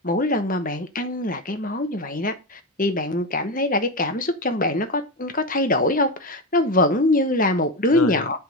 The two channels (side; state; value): both; normal; correlation 0.16